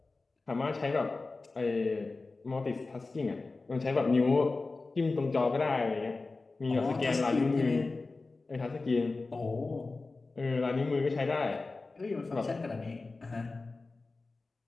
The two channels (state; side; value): quieter; right; 3.6 dB